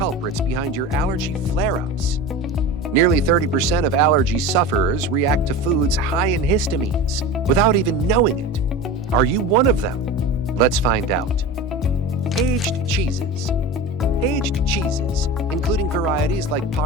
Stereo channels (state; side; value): normal; both; correlation 0.30